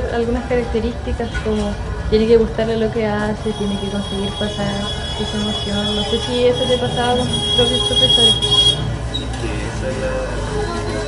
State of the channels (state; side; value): identical; both; correlation 1.00